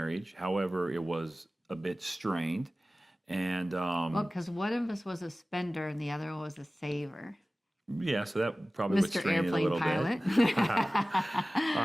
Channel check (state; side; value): normal; both; correlation 0.97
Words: However, it was a bit strained. And because one of us was a spender and the other one was a saver. Yeah, so that probably would Mr. strain it a little Airplane bit. Pilot. All